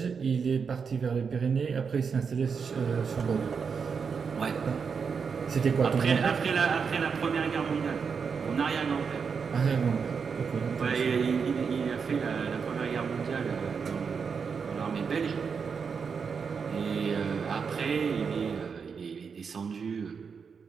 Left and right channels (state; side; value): quieter; left; 5.9 dB